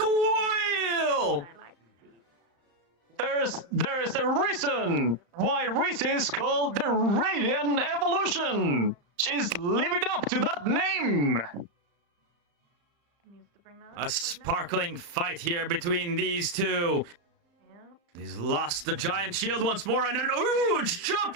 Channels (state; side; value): late; left; 35 ms